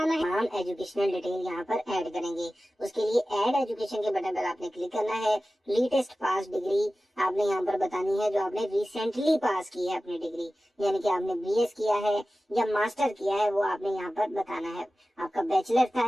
है, हम एजुकेशनल डिटेल यहाँ पर ऐड करेंगे। उसके लिए ऐड एजुकेशन के बटन पर आपने क्लिक करना है। लेटेस्ट पास डिग्री आपने यहाँ पर बतानी है जो आपने रिसेंटली पास की है अपनी डिग्री, यानी कि आपने बीएस किया है या मास्टर किया है वो आपने यहाँ पर बताना है। आपका बैचलर था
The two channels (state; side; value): normal; both; correlation 0.96